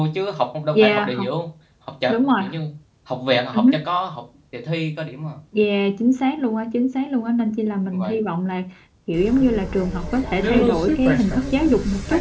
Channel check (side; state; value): both; identical; correlation 1.00